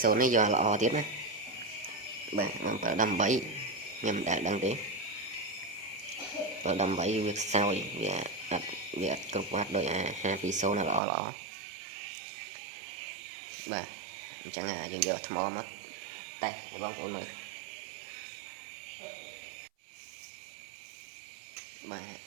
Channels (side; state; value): left; drops out; at 11.0 s